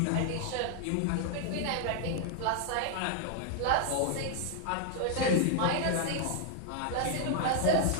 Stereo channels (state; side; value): different; both; correlation 0.00